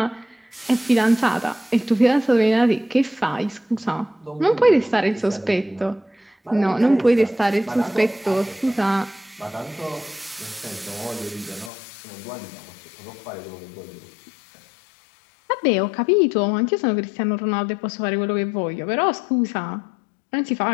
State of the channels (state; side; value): drops out; right; at 11.7 s